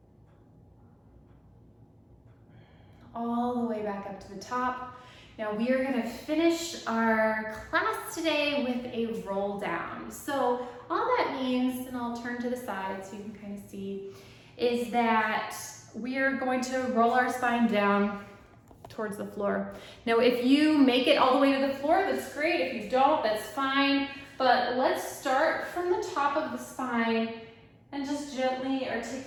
All the way back up to the top. Now we are going to finish our class today with a roll down. So all that means, and I'll turn to the side so you can kind of see, is that we are going to roll our spine down towards the floor. Now if you make it all the way to the floor, that's great. If you don't, that's fine. But let's start from the top of the spine and just gently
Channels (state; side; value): identical; both; correlation 1.00